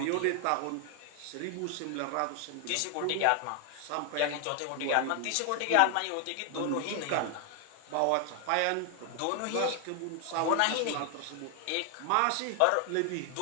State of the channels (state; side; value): different; both; correlation 0.00